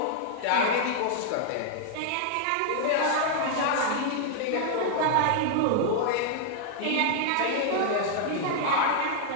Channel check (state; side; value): different; both; correlation -0.01